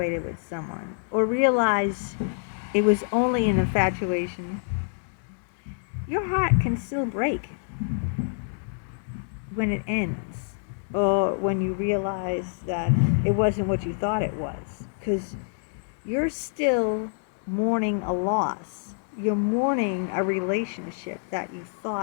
with someone or realize it was only an infatuation, your heart can still break when it ends or when you realize that it wasn't what you thought it was, because you're still mourning a loss. You're mourning a relationship that you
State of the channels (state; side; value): silent; right; digital silence